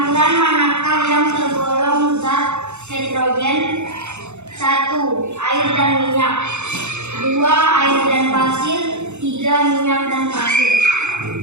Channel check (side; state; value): left; late; 0.82 ms